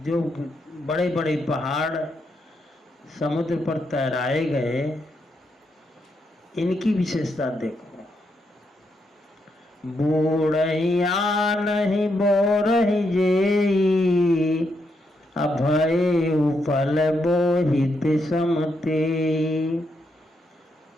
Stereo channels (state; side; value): normal; both; correlation 0.80